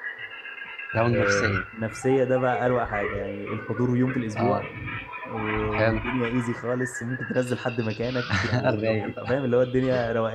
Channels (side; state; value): both; identical; correlation 1.00